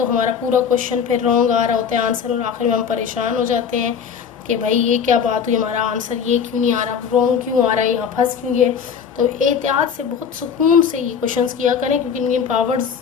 हमारा पूरा क्वेश्चन फिर रॉन्ग आ रहा होता है आंसर, और आखिर में हम परेशान हो जाते हैं कि भाई ये क्या बात हुई, हमारा आंसर ये क्यों नहीं आ रहा, रॉन्ग क्यों आ रहा है, यहाँ फंस क्यों गए। तो एहतियात से बहुत सुकून से ये क्वेश्चंस किया करें क्योंकि इनके पावर्स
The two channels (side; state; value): right; quieter; 7.1 dB